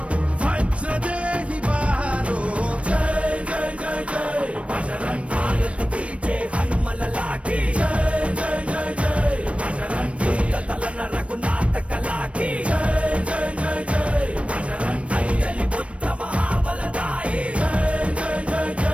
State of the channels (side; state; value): left; late; 0.062 ms